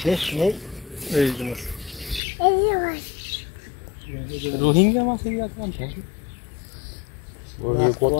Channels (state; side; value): drops out; right; at 2.2 s